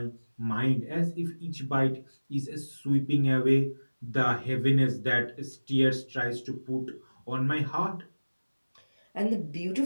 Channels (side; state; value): both; inverted; correlation -1.00